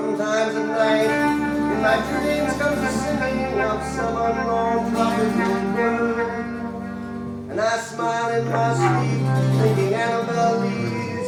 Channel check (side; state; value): both; identical; correlation 1.00